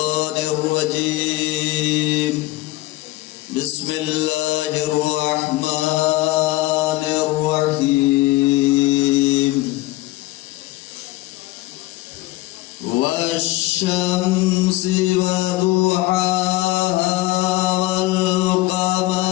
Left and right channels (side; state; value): right; quieter; 18.3 dB